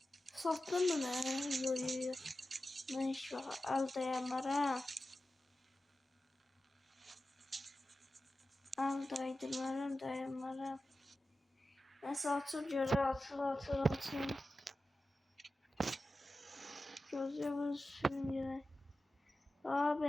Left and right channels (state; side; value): normal; both; correlation 0.94